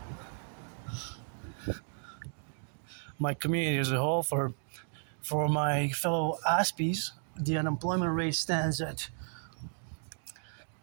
My community as a whole, for my fellow Aspies, the unemployment rate stands at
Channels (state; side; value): silent; left; 55 dB below the other